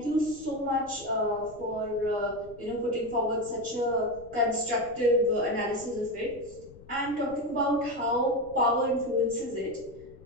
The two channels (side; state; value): left; noise; rumble, 21 dB below the sound